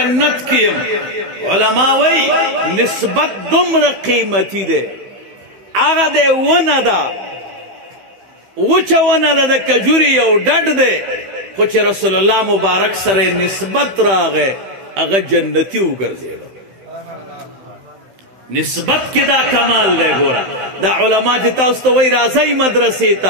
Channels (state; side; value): late; left; 15 ms